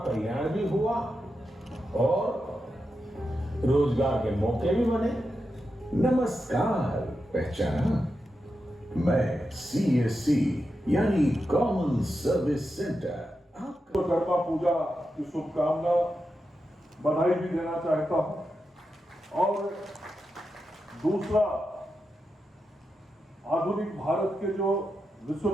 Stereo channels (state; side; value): normal; both; correlation 0.88